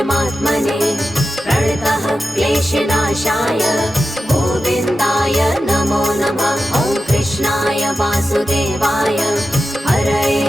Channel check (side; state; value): both; normal; correlation 0.92